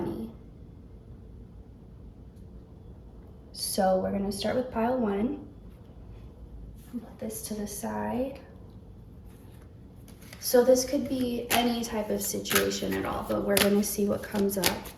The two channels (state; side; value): identical; both; correlation 1.00